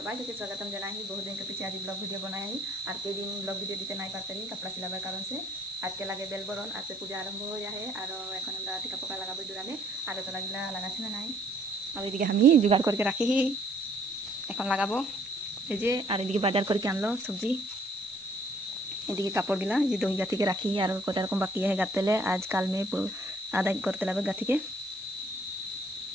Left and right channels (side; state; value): right; noise; hiss, 22 dB below the sound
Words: के स्वागतम जना ही बहुत दिन के पीछे आज ब्लॉग वीडियो बनाया ही और कई दिन ब्लॉग वीडियो दीते नहीं पाते ही कपड़ा सिलाबार कारण से आज के लगे बेल बरन आज से पूजा आरम्भ हो जाए और এখন আমরা টিকা পোকা লাগাবো জোড়ালে আর তো লাগিলা লাগাছে না নাই আর এদিকে আমি জোগাড় করকে রাখি এখন লাগাবো এই যে আর এদিকে বাজার করকে আনলো সবজি এদিকে কাপড় গিলা যে দই গাথিকে রাখি আর কত রকম বাকি है গাতেলে आज কাল में आधा करते लगे गाथी के